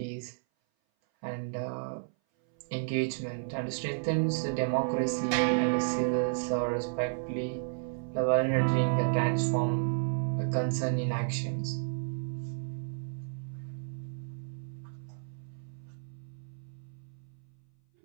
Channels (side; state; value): left; silent; 56 dB below the other